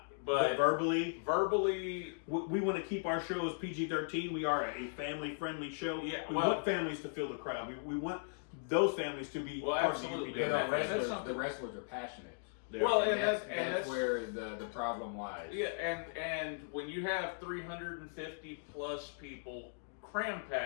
But verbally, we want to keep our show as PG-13. We are a family-friendly show. Yeah, we well- want families to fill the crowd. We want those families to be part absolutely. of You UPW. know, That's the wrestlers are passionate. Well, And and that's that's where the problem lies. yeah, and when you have 350 plus people cram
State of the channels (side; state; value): right; silent; digital silence